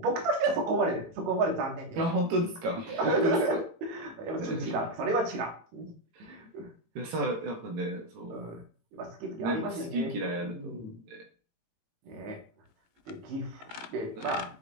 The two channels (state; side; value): late; left; 18 ms